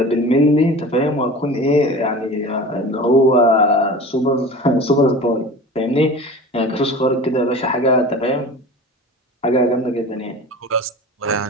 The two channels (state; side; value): normal; both; correlation 0.36